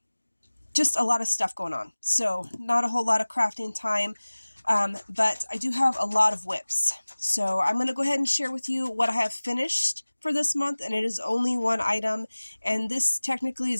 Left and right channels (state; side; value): inverted; both; correlation -1.00